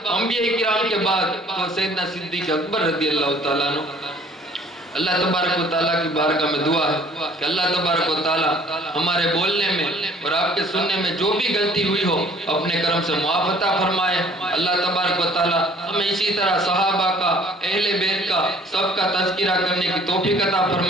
انبیاء کرام کے بعد، تو سیدنا صدیق اکبر رضی اللہ تعالیٰ عنہ. اللہ تبارک و تعالیٰ کی بارگاہ میں دعا ہے کہ اللہ تبارک و تعالیٰ ہمارے بولنے میں اور آپ کے سننے میں جو بھی غلطی ہوئی ہو اپنے کرم سے معاف عطا فرمائے. اللہ تبارک و تعالیٰ ہمیں اسی طرح صحابہ کا، اہل بیت کا، سب کا تذکرہ کرنے کی توفیق عطا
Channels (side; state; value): both; normal; correlation 0.56